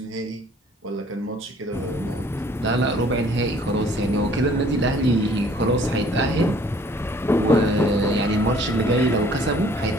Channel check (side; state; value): both; normal; correlation 0.57